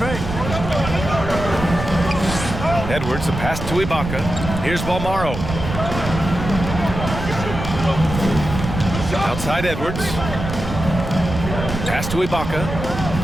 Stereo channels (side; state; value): right; noise; rumble, 6 dB below the sound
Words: Edwards, a pass to Ibaka. Here's Balmaro. Outside Edwards. Pass to Ibaka.